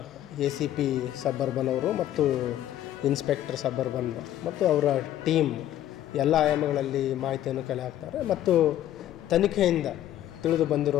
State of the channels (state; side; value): quieter; right; 12.4 dB